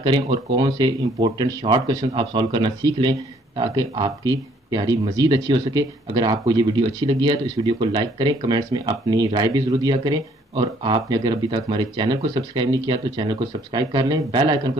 और कौन से इंपॉर्टेंट शॉर्ट क्वेश्चन आप सॉल्व करना सीख लें, ताकि आपकी तैयारी मजीद अच्छी हो सके। अगर आपको ये वीडियो अच्छी लगी है तो इस वीडियो को लाइक करें, कमेंट्स में अपनी राय भी ज़रूर दिया करें, और आपने अगर अभी तक हमारे चैनल को सब्सक्राइब नहीं किया तो चैनल को सब्सक्राइब कर लें, बेल आइकन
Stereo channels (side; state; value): both; normal; correlation 0.63